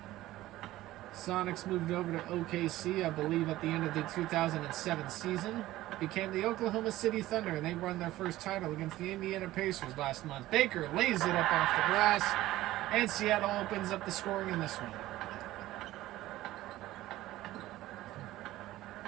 Sonics moved over to OKC, I believe, at the end of the 2007 season. Became the Oklahoma City Thunder, and they won their first title against the Indiana Pacers last month. Baker lays it up off the glass, and Seattle opens up the scoring in this one.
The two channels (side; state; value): left; quieter; 15.9 dB